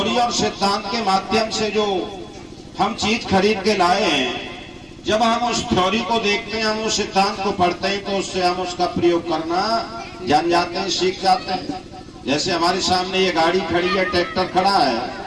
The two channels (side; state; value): both; identical; correlation 1.00